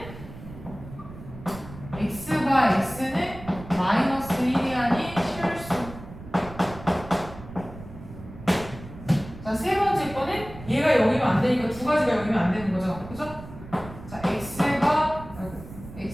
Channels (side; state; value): right; noise; rumble, 15 dB below the sound